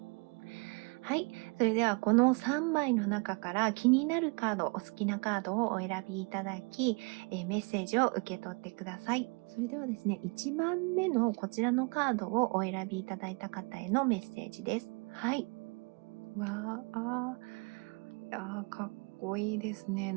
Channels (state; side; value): quieter; left; 31.3 dB